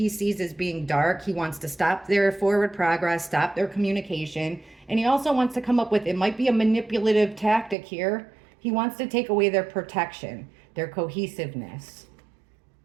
sees as being dark. He wants to stop their forward progress, stop their communication. And he also wants to come up with, it might be a manipulative tactic here. He wants to take away their protection, their cohesiveness.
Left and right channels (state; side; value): drops out; left; at 7.8 s